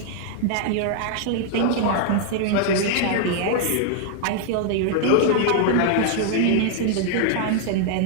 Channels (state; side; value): different; both; correlation -0.01